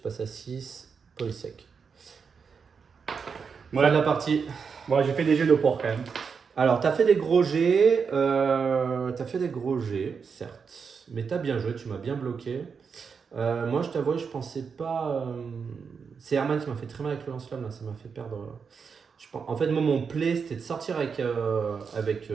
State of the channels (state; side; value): quieter; left; 5.9 dB